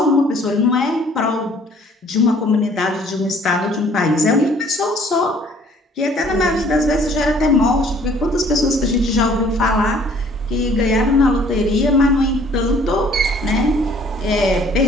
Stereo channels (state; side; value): normal; both; correlation 0.56